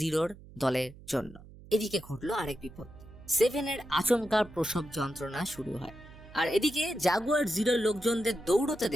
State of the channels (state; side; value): noise; right; hum, 19 dB below the sound